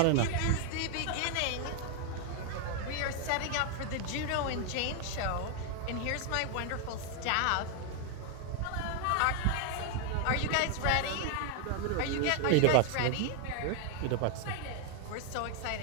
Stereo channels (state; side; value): different; both; correlation 0.00